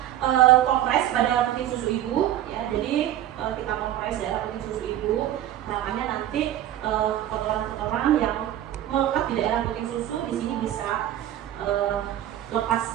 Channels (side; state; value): left; quieter; 12.4 dB